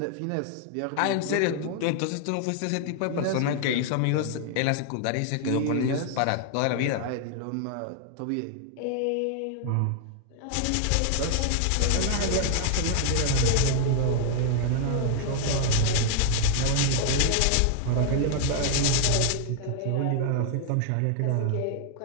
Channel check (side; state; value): both; different; correlation 0.00